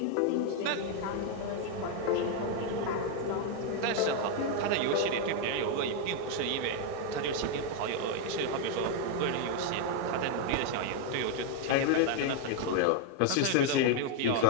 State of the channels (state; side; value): different; both; correlation 0.00